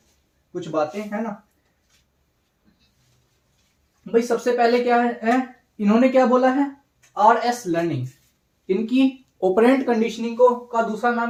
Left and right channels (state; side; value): identical; both; correlation 1.00